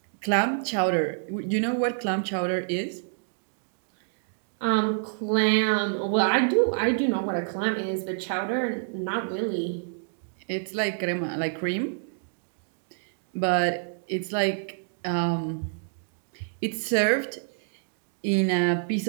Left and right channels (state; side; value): silent; left; digital silence